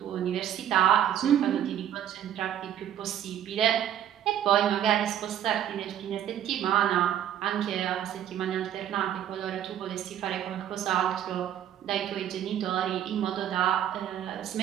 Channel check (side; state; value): left; quieter; 10.5 dB